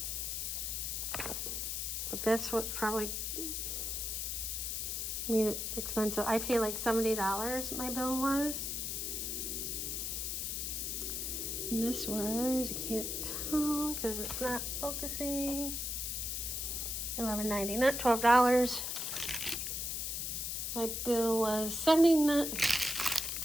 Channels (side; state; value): left; noise; hiss, 2 dB below the sound